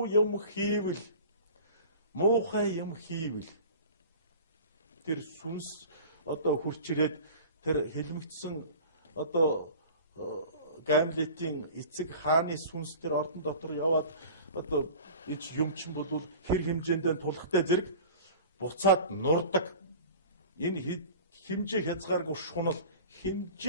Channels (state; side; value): inverted; both; correlation -0.39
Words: юм хийвэл муухай юм хийвэл тэр сүнс одоо хурч ирээд тэр хэлмэгдсэн одоо Гамлетийн эцэг хааны сүнс тэр ордон дотор яваад одоо ич юмчин болвол хэр хэмжээндээ тулахтай зэрэг буцаад нурдаг. Энэ хэмжээ хязгааргүй шунал,